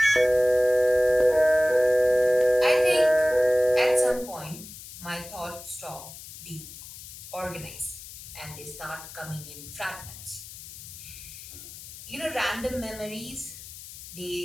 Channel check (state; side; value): noise; left; hiss, 14 dB below the sound